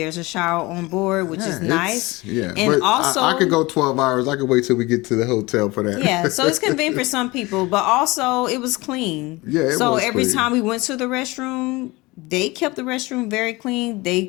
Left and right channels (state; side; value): quieter; right; 22.4 dB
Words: a shower on board, which is nice. Yeah, And but also I could go 12 hours. I could wait till we get to the hotel for that. yeah, so it's convenient for some people, but also it was clean. Yeah, it so was every clean. time we went to the restroom, they kept the restroom very clean. They